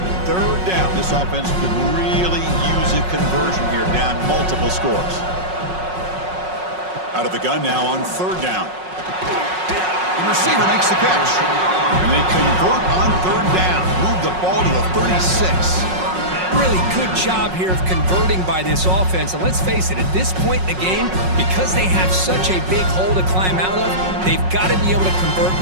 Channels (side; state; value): left; late; 5.4 ms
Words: 3rd down. This offense could really use a conversion here, down multiple scores. Out of the gun now on 3rd down. The receiver makes the catch. And they convert on 3rd down. Move the ball to the 36. Really good job here of converting by this offense. And let's face it, at this point in the game, because they have such a big hole to climb out of, they've got to be able to convert